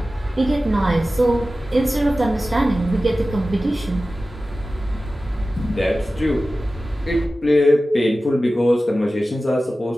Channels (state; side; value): normal; both; correlation 0.95